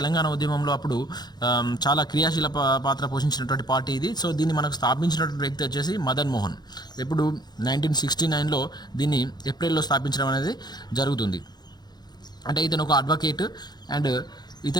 ఉద్యమంలో అప్పుడు చాలా క్రియాశీల పాత్ర పోషించినటువంటి పార్టీ ఇది. సో దీన్ని మనకు స్థాపించినటువంటి వ్యక్తి వచ్చేసి మదన్ మోహన్. ఇప్పుడు 1969లో దీన్ని ఏప్రిల్లో స్థాపించడం అనేది జరుగుతుంది. అంటే ఇతను ఒక అడ్వకేట్ అండ్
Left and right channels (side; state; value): right; late; 0.20 ms